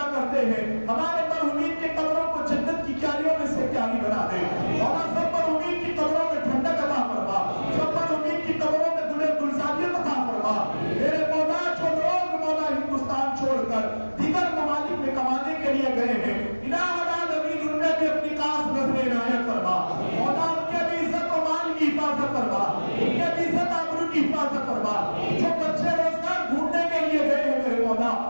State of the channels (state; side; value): inverted; both; correlation -1.00